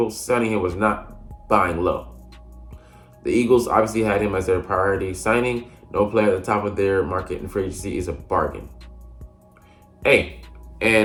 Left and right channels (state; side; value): identical; both; correlation 1.00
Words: Signing him was not buying low. The Eagles obviously had him as their priority signing. No player at the top of their market in free agency is a bargain. Hey,